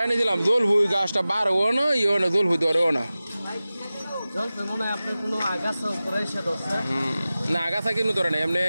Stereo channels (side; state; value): both; inverted; correlation -0.97